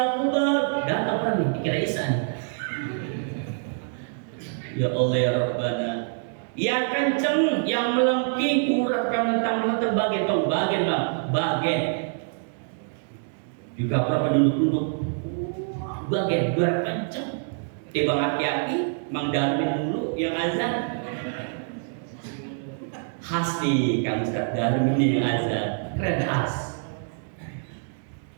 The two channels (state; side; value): silent; left; 60 dB below the other